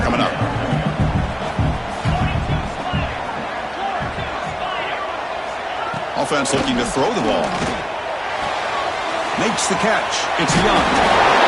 coming up. Offense looking to throw the ball. Makes the catch. It's Young.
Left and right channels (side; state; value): both; identical; correlation 1.00